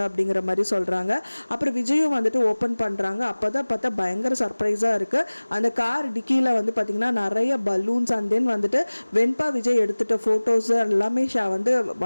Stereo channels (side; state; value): both; inverted; correlation -1.00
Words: அப்படிங்கிற மாதிரி சொல்கிறாங்க. அப்புறம் விஜயும் வந்துட்டு ஓப்பன் பண்ணுறாங்க. அப்போ தான் பார்த்தா பயங்கர சர்ப்ரைஸாக இருக்குது. அந்த கார் டிக்கியில் வந்து பார்த்திங்கன்னா நிறைய பலூன்ஸ் அண்ட் தென் வந்துட்டு வெண்பா விஜய் எடுத்துகிட்ட ஃபோட்டோஸ் எல்லாமே வந்து